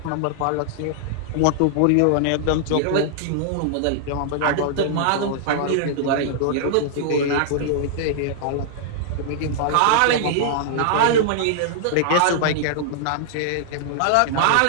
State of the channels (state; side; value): different; both; correlation -0.01